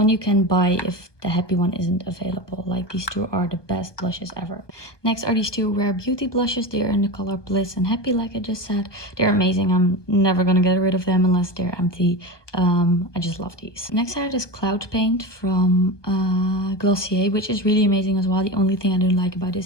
you can buy if the Happy one isn't available. Like, these two are the best blushes ever. Next are these two Rare Beauty blushes. They're in the color Bliss and Happy, like I just said. They're amazing. I'm never gonna get rid of them unless they're empty. I just love these. Next I have this Cloud Paint from Glossier, which is really amazing as well. The only thing I don't like about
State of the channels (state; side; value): late; right; 1.2 ms